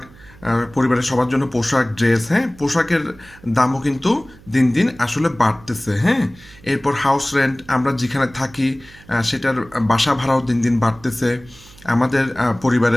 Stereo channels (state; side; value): noise; right; hum, 23 dB below the sound